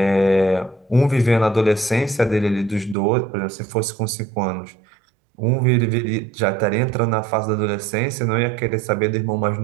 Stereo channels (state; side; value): drops out; left; at 3.0 s